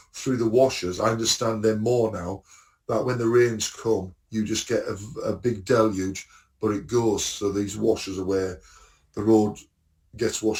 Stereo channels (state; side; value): identical; both; correlation 1.00